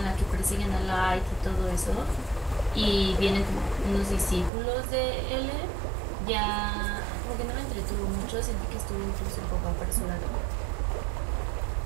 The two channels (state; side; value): drops out; left; at 4.5 s